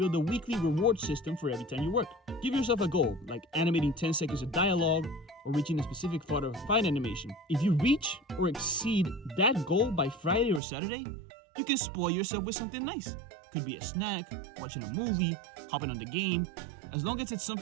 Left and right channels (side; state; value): left; drops out; at 10.6 s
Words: a weekly reward system for every time you work. Give yourself a goal, like animating 10 seconds of dialogue or reaching a specific part of a fight animation. If you reach or exceed that goal by Friday or Saturday, you can spoil yourself with something nice. Could be a snack, watching a movie, hopping on the game. As long as it's